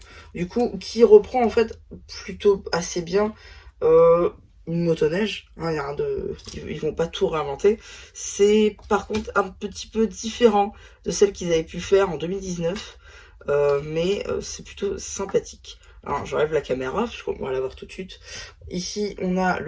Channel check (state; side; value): identical; both; correlation 1.00